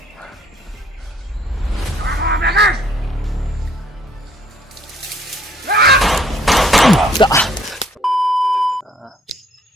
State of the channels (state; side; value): normal; both; correlation 0.62